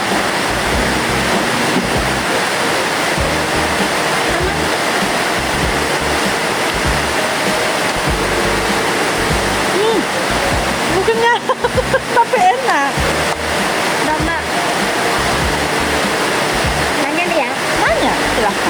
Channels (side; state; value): both; identical; correlation 1.00